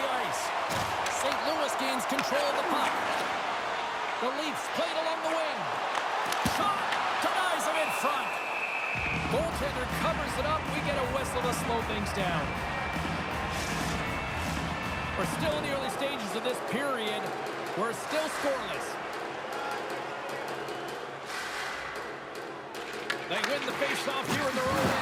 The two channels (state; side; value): identical; both; correlation 1.00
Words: ice. St. Louis gains control of the puck. The Leafs play it along the wing. Shot! Denies him in front. Goaltender covers it up. We get a whistle to slow things down. We're still in the early stages of this period. We're still scoreless. They win the face-off here in their own